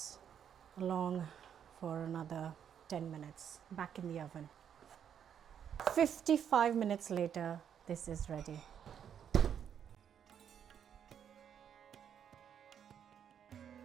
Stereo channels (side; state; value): left; quieter; 8.6 dB